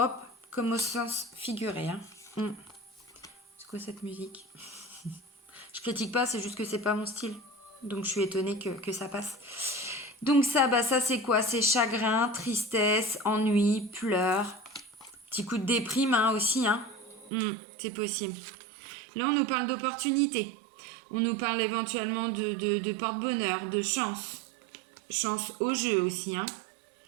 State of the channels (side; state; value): left; drops out; at 17.3 s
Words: comme au sens figuré. Hein. C'est quoi cette musique? Je critique pas, c'est juste que c'est pas mon style. Donc, je suis étonnée que ça passe. Donc ça, bah ça c'est quoi? C'est chagrin, tristesse, ennui, pleurs. Petit coup de déprime hein, aussi. Hein. C'est possible. Là, on nous parle d'opportunités. On nous parle éventuellement de porte-bonheur, de chance. Chance au jeu aussi. Hein.